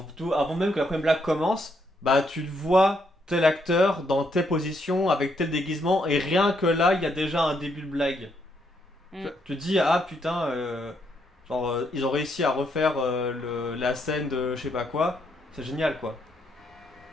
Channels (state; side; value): normal; both; correlation 0.75